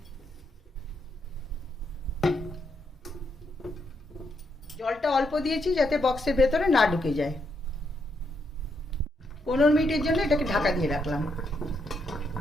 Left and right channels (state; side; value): normal; both; correlation 0.78